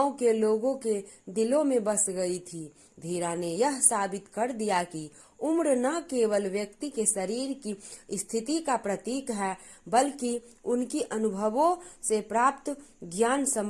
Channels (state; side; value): identical; both; correlation 1.00